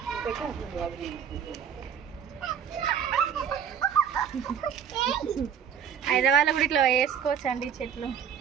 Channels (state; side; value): quieter; left; 8.0 dB